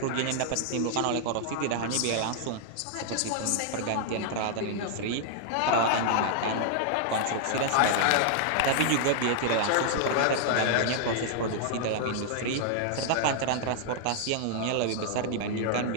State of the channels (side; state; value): both; different; correlation -0.01